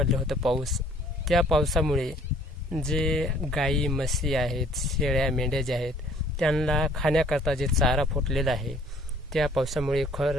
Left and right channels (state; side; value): normal; both; correlation 0.57